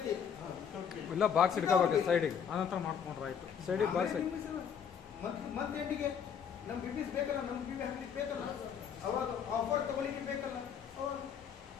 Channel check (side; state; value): right; quieter; 7.6 dB